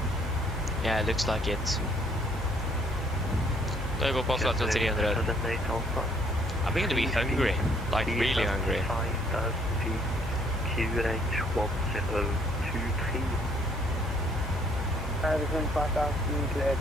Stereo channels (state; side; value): normal; both; correlation 0.64